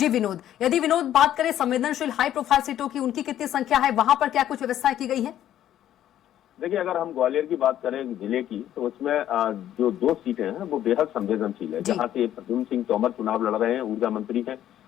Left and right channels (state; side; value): quieter; right; 11.6 dB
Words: विनोद, यदि विनोद बात करें संवेदनशील हाई प्रोफाइल सीटों की, उनकी कितनी संख्या है, वहां पर क्या कुछ व्यवस्थाएं की गई है? देखिए, अगर हम ग्वालियर की बात करें जिले की तो उसमें जो 2 सीटें हैं वो बेहद संवेदनशील है। जहां से प्रद्युम्न सिंह तोमर चुनाव लड़ रहे हैं, ऊर्जा मंत्री हैं।